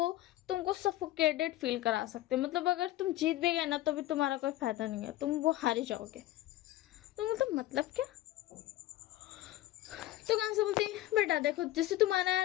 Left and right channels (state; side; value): quieter; right; 15.5 dB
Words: तुमको सफोकेटेड फील करा सकते हैं। मतलब अगर तुम जीत भी गए ना, तो भी तुम्हारा कोई फायदा नहीं है, तुम वो हार ही जाओगे। तो मतलब क्या? तो कहाँ से बोलती बेटा देखो, जैसे तुम्हारा